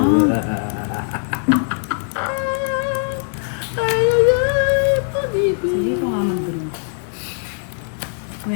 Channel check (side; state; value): right; silent; digital silence